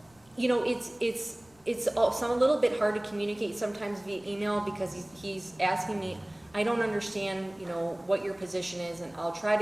you know, it's a little bit hard to communicate sometimes via email, because he's asking me, I don't understand, you know, what your position is, and I'll try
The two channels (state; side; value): noise; left; rumble, 30 dB below the sound